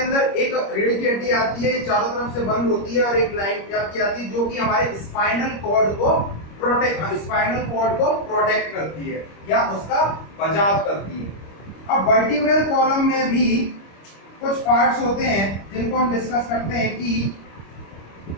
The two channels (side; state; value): right; late; 25 ms